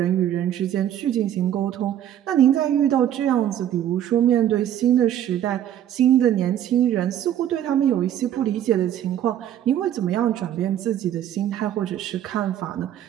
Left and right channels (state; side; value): quieter; left; 11.0 dB